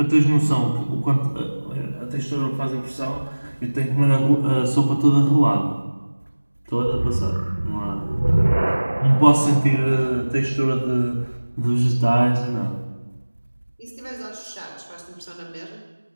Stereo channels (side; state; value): both; inverted; correlation -1.00